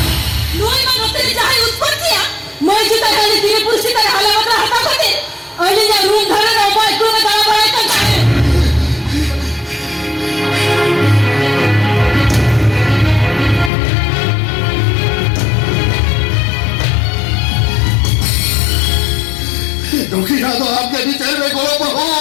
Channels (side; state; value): right; drops out; at 13.7 s